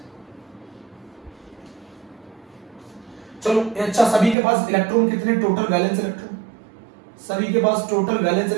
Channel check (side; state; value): left; drops out; at 4.4 s